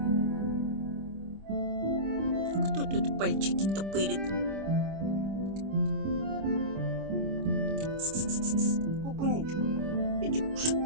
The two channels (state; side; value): late; left; 25 ms